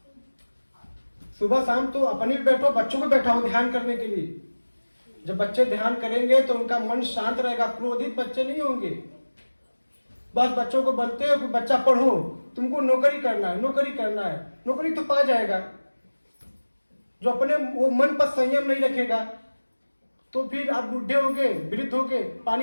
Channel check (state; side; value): inverted; both; correlation -1.00